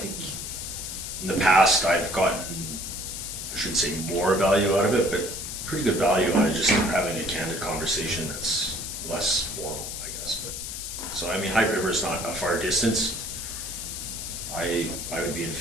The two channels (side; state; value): left; noise; hiss, 6 dB below the sound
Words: in the past I've gotten, I shouldn't say more value out of it, but pretty good value out of just having a candid conversation that's less formal, I guess. But so I mean, High River is not a far distance. I would be in